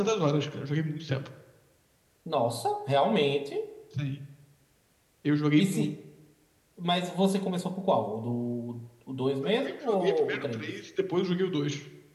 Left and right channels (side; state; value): both; identical; correlation 1.00